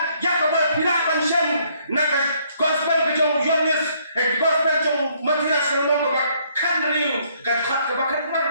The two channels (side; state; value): both; inverted; correlation -0.67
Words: ya ke berpirakan syam nak gospel ke jong Yohanes gospel jong Matias selong ke bakkan riu ke bakkan